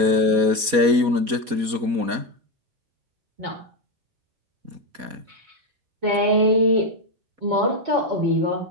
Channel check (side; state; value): left; late; 4.2 ms